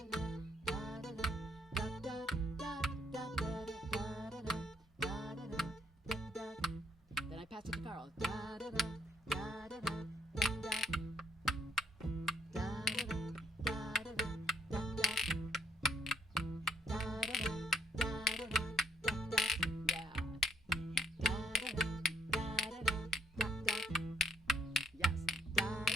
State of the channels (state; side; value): normal; both; correlation 0.67